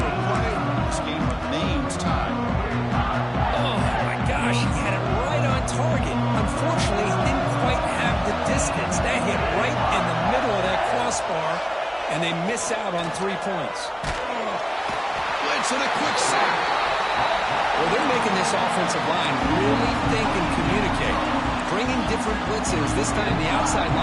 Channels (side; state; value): both; identical; correlation 1.00